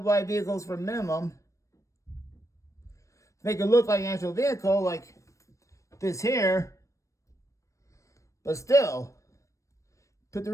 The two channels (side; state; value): right; late; 0.15 ms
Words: wide vehicles for minimum. Make it look like an actual vehicle, like this here. But still, put the